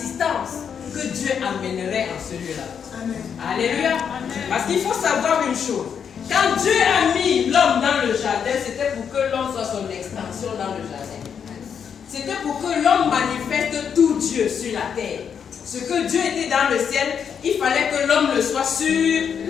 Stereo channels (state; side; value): quieter; right; 7.4 dB